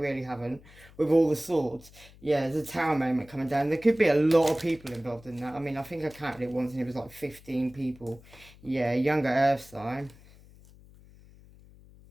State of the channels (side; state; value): left; noise; hum, 23 dB below the sound